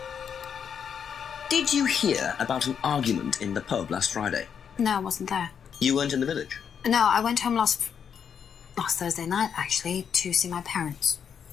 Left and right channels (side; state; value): right; quieter; 7.5 dB